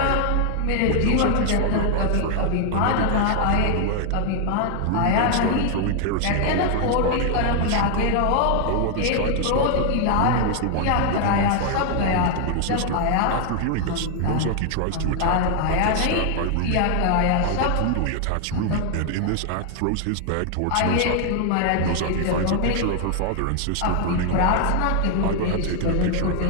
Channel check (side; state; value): both; different; correlation 0.00